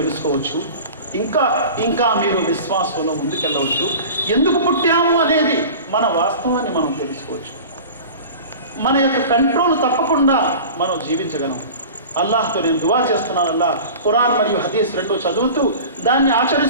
తెలుసుకోవచ్చు. ఇంకా మీరు విశ్వాసంలో ముందుకెళ్ళవచ్చు. ఎందుకు పుట్టాము అనేది మన వాస్తవాన్ని మనం తెలుసుకోవచ్చు. మన యొక్క కంట్రోల్ తప్పకుండా మనం జీవించగలం. అల్లాహ్తో నేను దువా చేస్తున్నాను, అల్లాహ్ ఖురాన్ మరియు హదీస్ రెండు చదువుతూ దాన్ని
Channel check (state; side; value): inverted; both; correlation -0.37